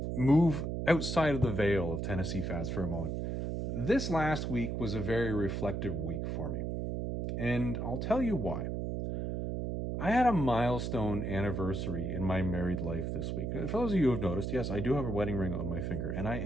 move outside of the veil of Tennessee Fats for a moment. This last week was a very reflective week for me. And I'll tell you why. I had a milestone anniversary in my married life this week. For those of you who have noticed, yes, I do have a wedding ring on my finger, and I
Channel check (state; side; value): noise; right; hum, 2 dB below the sound